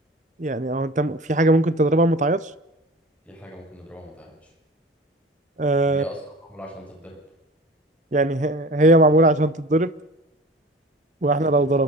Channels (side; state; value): both; normal; correlation 0.39